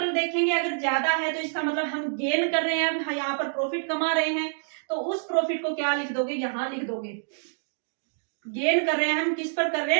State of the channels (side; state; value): left; silent; digital silence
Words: देखेंगे, अगर ज्यादा है तो इसका मतलब हम गेन कर रहे हैं, हम यहाँ पर प्रॉफिट कमा रहे हैं, तो उस प्रॉफिट को क्या लिख दोगे, यहाँ लिख दोगे। गेन कर रहे हैं हम, किस पर कर रहे